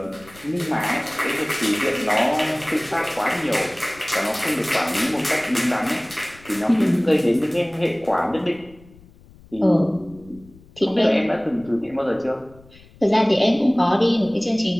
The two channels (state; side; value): noise; left; rumble, 24 dB below the sound